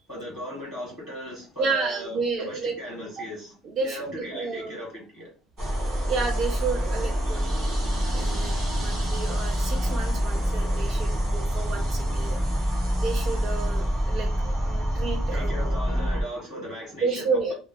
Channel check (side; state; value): both; normal; correlation 0.80